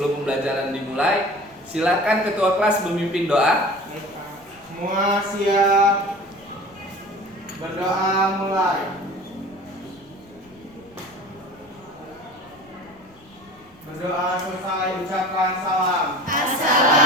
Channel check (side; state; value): left; noise; rumble, 29 dB below the sound